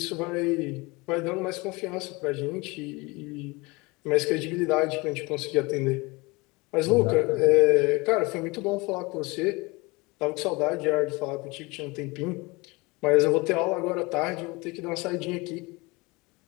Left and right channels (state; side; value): quieter; right; 24.8 dB